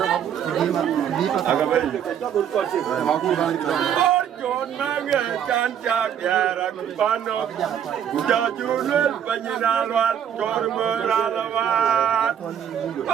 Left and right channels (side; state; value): left; quieter; 9.1 dB